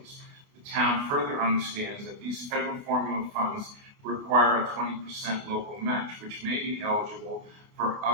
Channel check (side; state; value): left; late; 29 ms